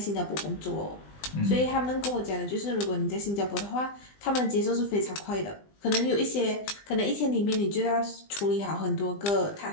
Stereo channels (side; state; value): right; late; 20 ms